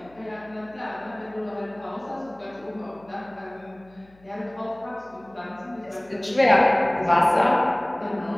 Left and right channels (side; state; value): left; noise; hum, 29 dB below the sound